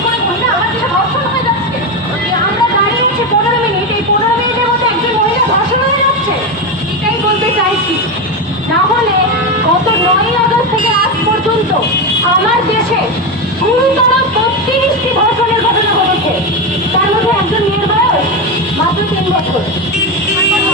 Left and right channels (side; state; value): both; normal; correlation 0.14